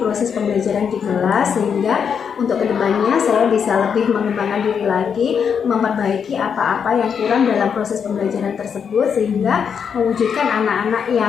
pembelajaran di kelas, sehingga untuk kedepannya saya bisa lebih mengembangkan diri lagi, memperbaiki apa-apa yang kurang dalam proses pembelajaran tersebut, sehingga mewujudkan anak-anak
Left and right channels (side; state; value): right; quieter; 7.0 dB